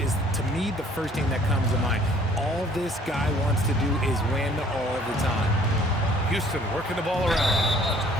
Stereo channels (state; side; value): normal; both; correlation 0.57